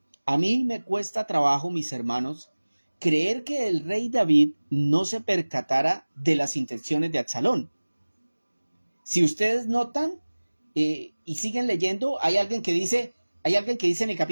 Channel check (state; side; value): inverted; both; correlation -1.00